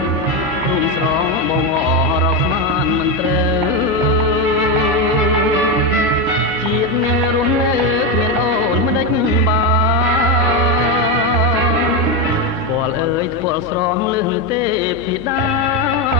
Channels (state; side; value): noise; right; hum, 18 dB below the sound